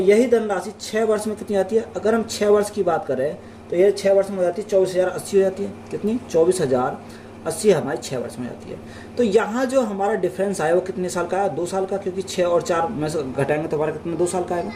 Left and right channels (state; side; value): identical; both; correlation 1.00